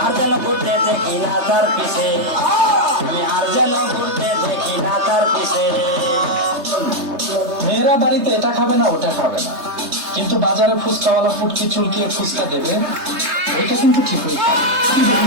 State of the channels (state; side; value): late; left; 3.3 ms